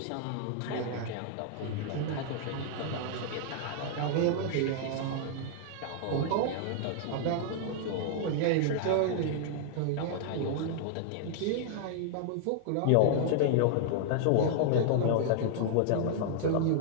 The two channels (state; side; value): different; both; correlation -0.01